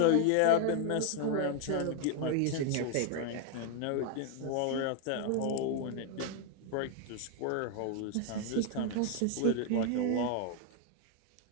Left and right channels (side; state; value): both; different; correlation 0.00